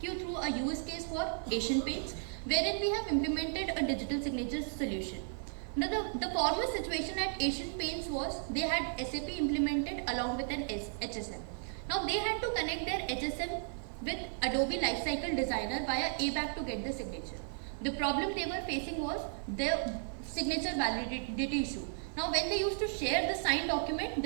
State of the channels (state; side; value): silent; left; 55 dB below the other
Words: you through a use case for Asian Paints, wherein we have implemented a digital signature solution. Now, the former situation at Asian Paints was they had SAP implemented along with an HSM. Now, they had to connect their HSM with Adobe Lifecycle Designer via ABAP to get the signature. The problem they were facing was their signature validity issue. Now, when they used to share the signed document,